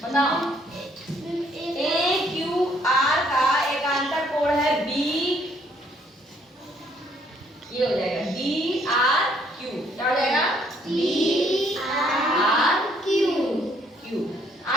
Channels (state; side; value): normal; both; correlation 0.66